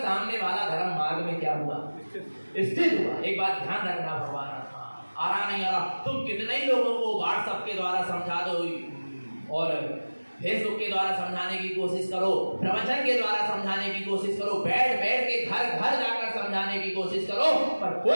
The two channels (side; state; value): both; inverted; correlation -1.00